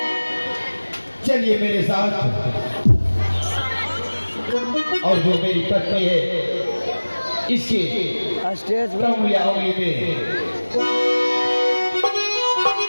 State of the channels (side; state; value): both; inverted; correlation -1.00